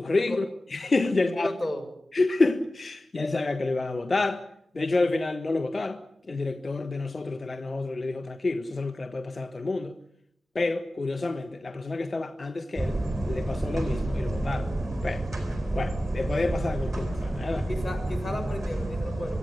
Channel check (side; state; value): both; normal; correlation 0.95